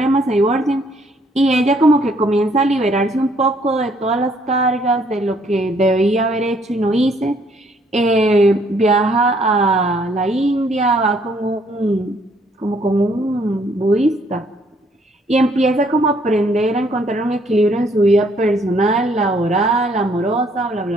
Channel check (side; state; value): both; normal; correlation 0.66